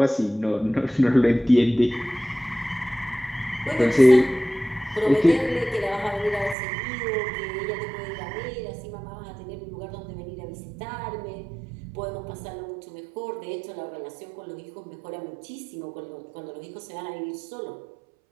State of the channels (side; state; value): left; drops out; at 6.6 s